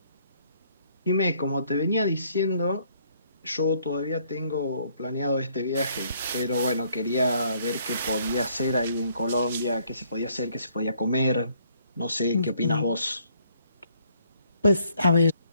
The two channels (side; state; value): both; inverted; correlation -0.67